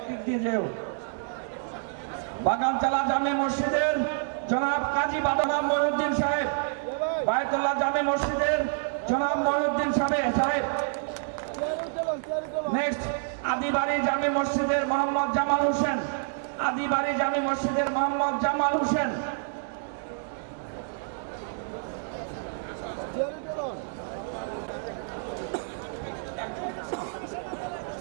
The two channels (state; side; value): silent; left; digital silence